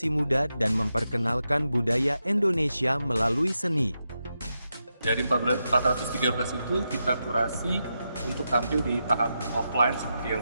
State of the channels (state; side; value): inverted; both; correlation -0.87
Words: muda dan memperkenalkan budaya Indonesia melalui seni. Dari 413 itu kita kurasi untuk tampil di tahap offline seperti yang